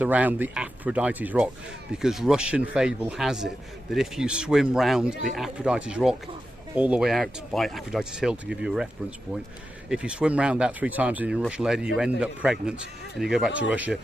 around the Aphrodite's Rock, because Russian fable has it that if you swim round the Aphrodite's Rock all the way out by Aphrodite's Hill, to give you a reference point, if you swim round that 3 times and you're a Russian lady, you end up pregnant and you go back to Russia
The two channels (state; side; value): normal; both; correlation 0.90